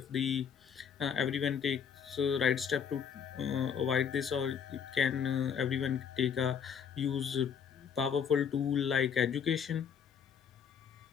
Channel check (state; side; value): quieter; right; 7.4 dB